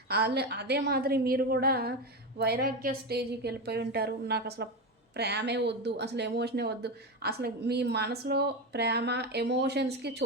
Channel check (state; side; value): normal; both; correlation 0.17